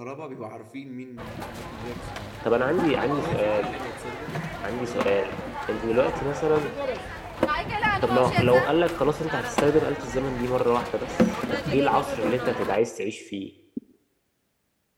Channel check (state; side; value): identical; both; correlation 1.00